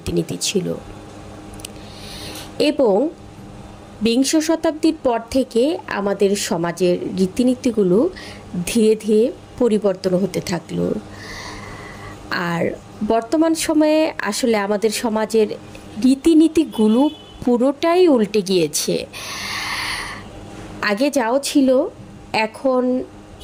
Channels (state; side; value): identical; both; correlation 1.00